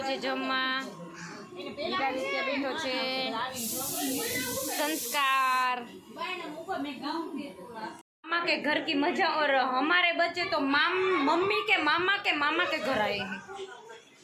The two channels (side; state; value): both; identical; correlation 1.00